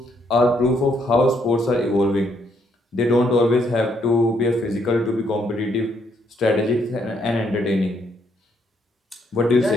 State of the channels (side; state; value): both; normal; correlation 0.72